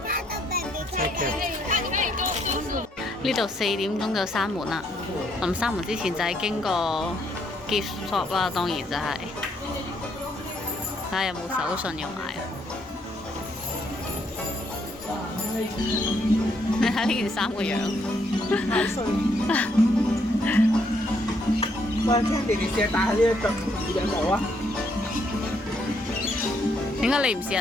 呢度4點鐘就閂門啦。臨閂門之前就係經過 gift shop 啦，當然就係睇下有冇手信要買。你睇呢件衫個樣，太衰。喂，Candy，你試下戴下呢一腳耳頂帽啊！點解你唔試下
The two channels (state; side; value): normal; both; correlation 0.72